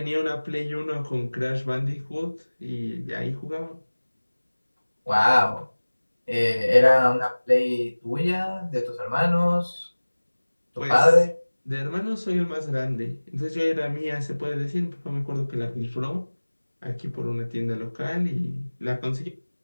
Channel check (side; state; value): both; inverted; correlation -1.00